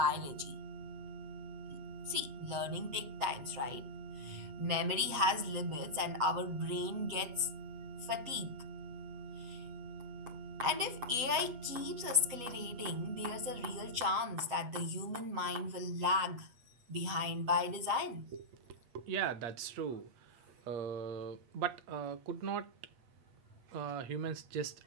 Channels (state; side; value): late; left; 8.3 ms